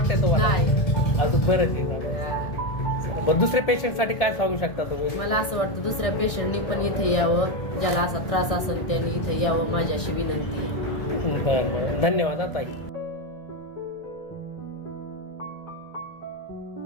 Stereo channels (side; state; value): right; late; 1.6 ms